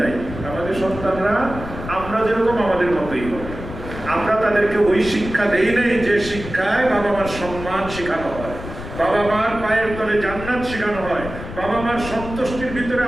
আমাদের সন্তানরা আমরা যেরকম আমাদের মতোই হবে। আমরা তাদেরকে ওই শিক্ষা দেই নাই যে শিক্ষায় বাবা মার সম্মান শেখানো হয়, বাবা মার পায়ের তলে জান্নাত শেখানো হয়, বাবা মার সন্তুষ্টির ভিতরে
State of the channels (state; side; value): noise; left; rumble, 10 dB below the sound